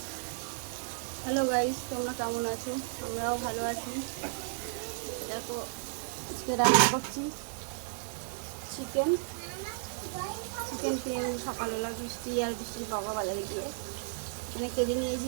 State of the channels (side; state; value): left; silent; digital silence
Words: hello guys, তোমরা কেমন আছো? আমরাও ভালো আছি। দেখো, আজকে রান্না করছি চিকেন চিকেন কিনে সকালবেলা বৃষ্টির বাবা বাজারে গিয়ে এখানে কেটে